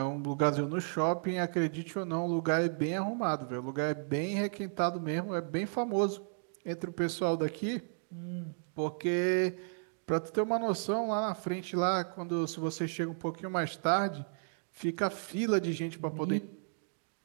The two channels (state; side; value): silent; left; digital silence